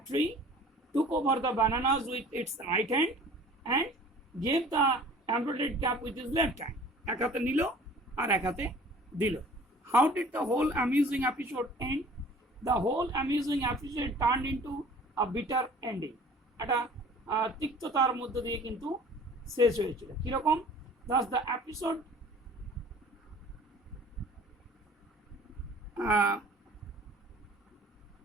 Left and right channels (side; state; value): both; normal; correlation 0.48